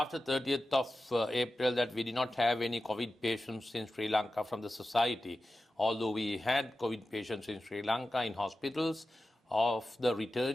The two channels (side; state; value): both; normal; correlation 0.93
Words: 30th of April that we did not have any COVID patients in Sri Lanka from the society, although we had COVID patients in Sri Lanka in hospitals. Of the